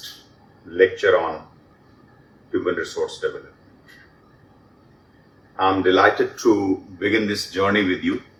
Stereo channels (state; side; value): identical; both; correlation 1.00